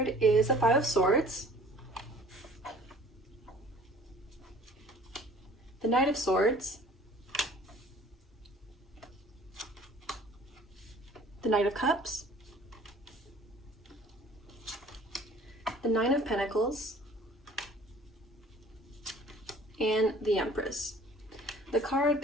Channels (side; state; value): both; normal; correlation 0.51